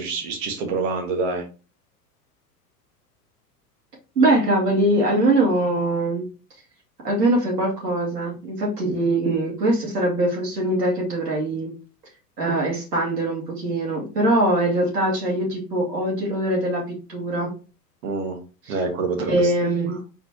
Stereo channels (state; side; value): normal; both; correlation 0.28